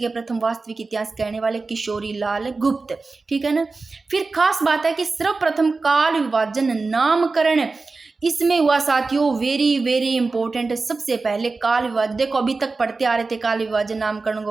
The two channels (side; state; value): left; quieter; 3.9 dB